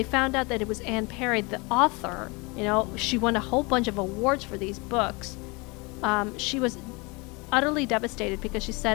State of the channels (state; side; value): quieter; right; 27.4 dB